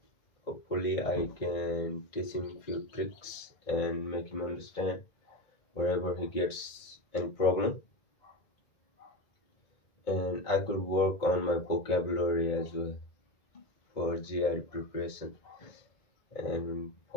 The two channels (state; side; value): late; right; 2.2 ms